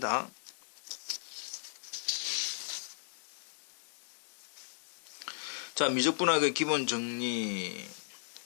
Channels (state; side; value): silent; right; digital silence